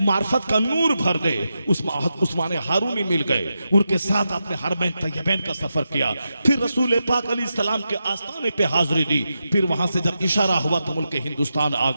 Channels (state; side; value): inverted; both; correlation -0.88